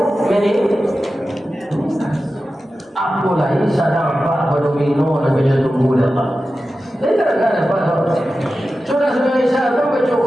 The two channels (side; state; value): both; normal; correlation 0.93